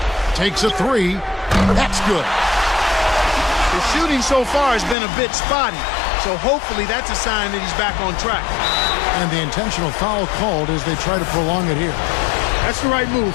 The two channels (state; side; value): drops out; right; at 5.0 s